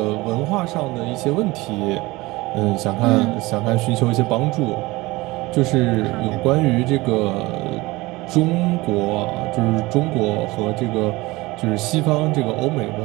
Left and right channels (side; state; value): left; quieter; 21.2 dB